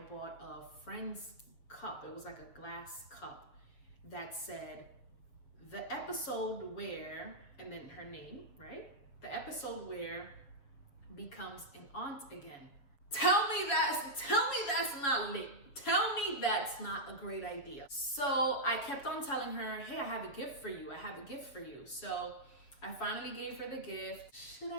bought a friend's cup. It was like a glass cup that said the episode where, and then her name, right? The episode where becomes an aunt again. Tell me that's not lit. Tell me that's not a great idea. So I kept on telling her, hey, I have a gift for you. I have a gift for you. So I finally gave her the gift. Should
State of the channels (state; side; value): late; right; 7.2 ms